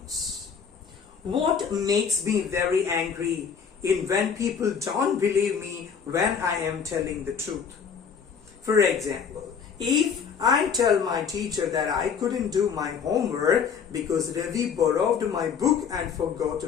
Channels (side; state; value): right; quieter; 6.6 dB